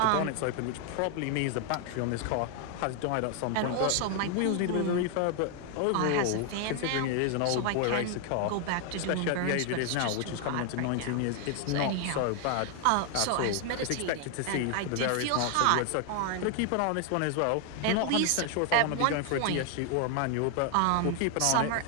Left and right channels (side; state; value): both; different; correlation 0.00